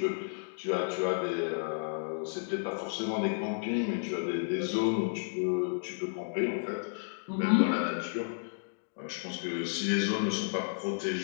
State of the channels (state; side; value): silent; right; digital silence